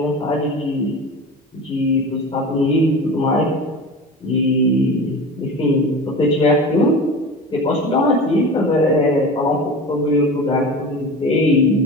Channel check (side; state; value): both; normal; correlation 0.32